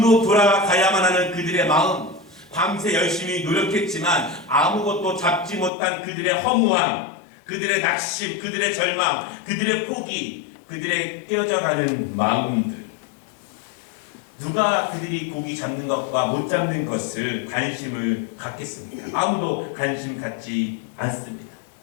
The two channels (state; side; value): drops out; right; at 5.7 s